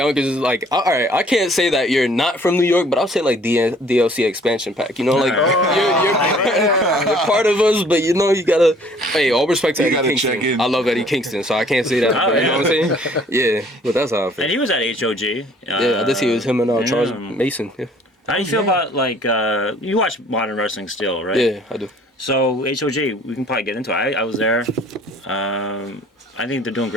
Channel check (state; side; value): normal; both; correlation 0.56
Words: is like, all right, I can't say that you're not from New York, but I'll say like DLC expansion pack. You know, like you're part of us, but you know you gotta. Hey, all respect to Eddie Kingston. I love Eddie Kingston, so I can't say that. You know what I'm saying? Yeah, but that's how I feel. And he was at HOG. Yeah, I did see it was him and Charles Mason. Yeah. How do you feel about like you watch modern wrestling still, right? Yeah, I do. So HOG, we can probably get into it. I was there. I think they're doing